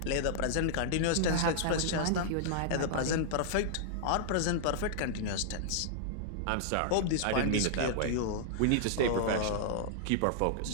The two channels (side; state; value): both; different; correlation -0.01